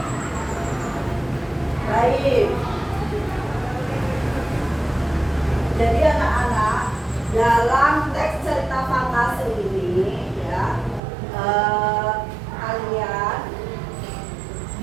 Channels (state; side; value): drops out; left; at 11.0 s